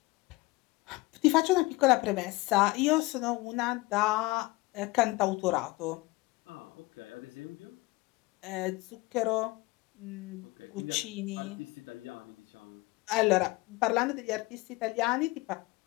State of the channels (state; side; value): quieter; right; 21.9 dB